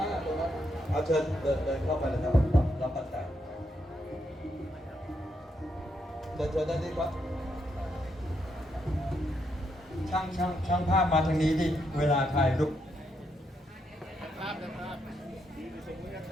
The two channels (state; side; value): normal; both; correlation 0.79